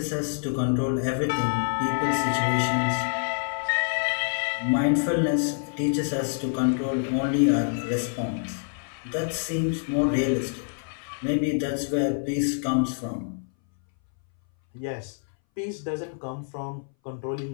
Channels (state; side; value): silent; right; 60 dB below the other